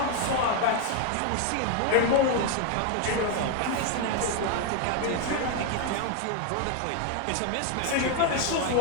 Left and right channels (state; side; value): different; both; correlation 0.01